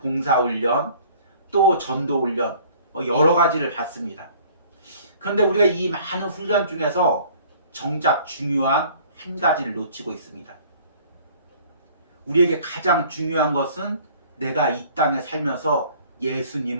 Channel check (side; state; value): both; inverted; correlation -0.52